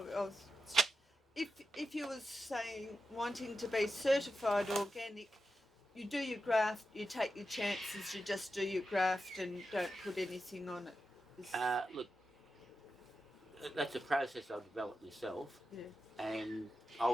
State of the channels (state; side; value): normal; both; correlation 0.90